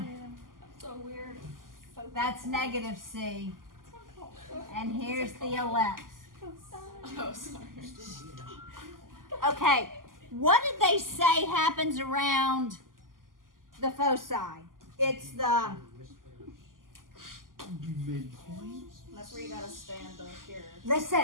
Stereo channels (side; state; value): left; late; 0.91 ms